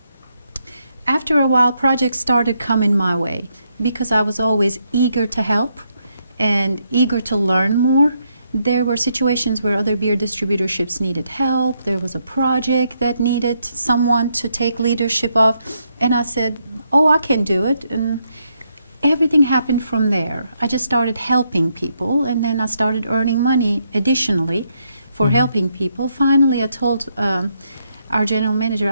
After a while, projects started coming my way because I was always eager to help and eager to learn more. There were situations where other beer distributorships needed help. There was a project that needed someone to take leadership of. And I said, oh, I can do it. And everything happened from there. I just started helping people, and then I started earning money additionally for helping people. Finally, I told our general manager,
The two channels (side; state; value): both; inverted; correlation -0.77